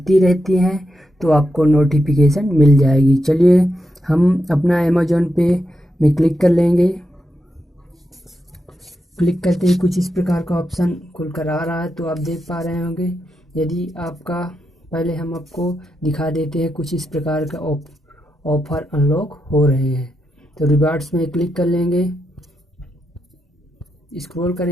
रहती हैं तो आपको नोटिफिकेशन मिल जाएगी। चलिए हम अपना अमेज़ॉन पे में क्लिक कर लेंगे। क्लिक करते ही कुछ इस प्रकार का ऑप्शन खुलकर आ रहा है, तो आप देख पा रहे होंगे। यदि आपका पहले हम आपको दिखा देते हैं कुछ इस प्रकार का ऑफ़र अनलॉक हो रहे हैं। तो रिवार्ड्स में क्लिक कर लेंगे, स्क्रॉल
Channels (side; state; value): both; normal; correlation 0.86